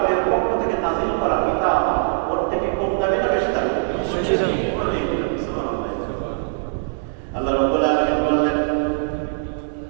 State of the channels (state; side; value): silent; left; digital silence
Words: পক্ষ থেকে নাযিল করা কিতাব ওর থেকে কম দামি না বেশি দামি? আল্লাহ রাব্বুল আলামিন বললেন,